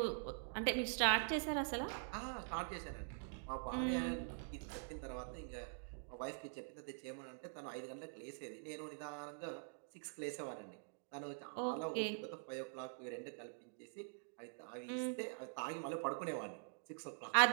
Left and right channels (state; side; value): silent; left; digital silence